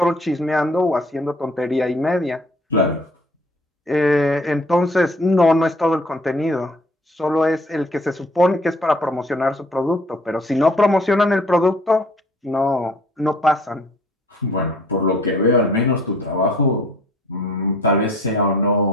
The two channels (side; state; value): both; normal; correlation 0.56